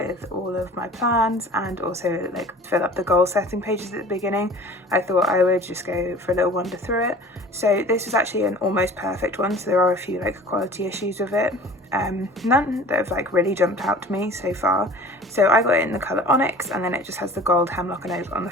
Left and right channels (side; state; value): both; normal; correlation 0.43